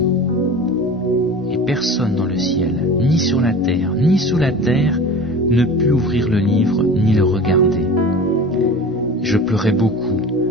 ?» Et personne dans le ciel, ni sur la terre, ni sous la terre, ne put ouvrir le livre ni le regarder. Je pleurais beaucoup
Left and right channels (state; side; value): normal; both; correlation 0.36